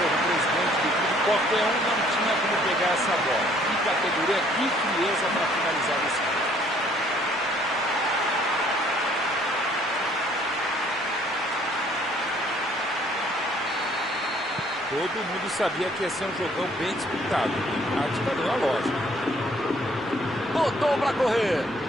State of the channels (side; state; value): both; normal; correlation 0.61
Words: o presidente do clube. Qualquer um não tinha como pegar essa bola. Que categoria, que frieza para finalizar desse cara. Todo mundo sabia que ia ser um jogão bem disputado. A tática deu a lógica. Botou para correr.